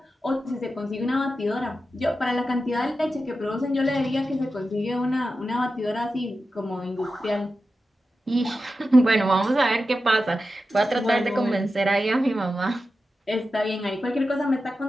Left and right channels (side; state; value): both; normal; correlation 0.91